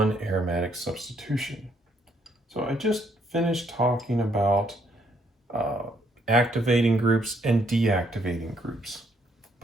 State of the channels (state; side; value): normal; both; correlation 0.70